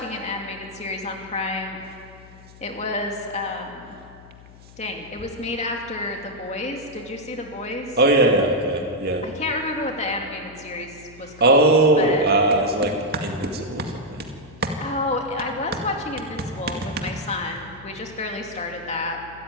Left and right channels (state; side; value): noise; left; hum, 21 dB below the sound